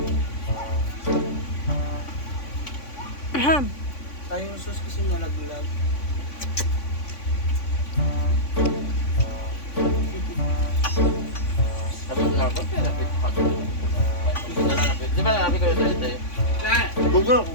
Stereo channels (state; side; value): late; right; 3.5 ms